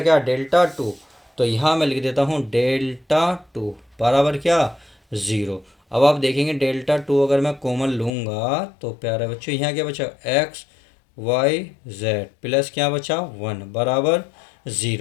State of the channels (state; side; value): drops out; right; at 8.1 s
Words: क्या डेल्टा टू, तो यहाँ मैं लिख देता हूँ डेल्टा टू बराबर क्या ज़ीरो। अब आप देखेंगे डेल्टा टू अगर मैं कॉमन लूँगा तो प्यारे बच्चों यहाँ क्या बचा, एक्स वाई जेड प्लस क्या बचा 1 बराबर